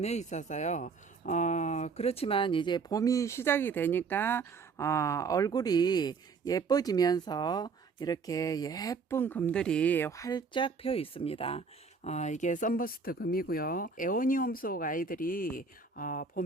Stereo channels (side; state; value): left; quieter; 5.0 dB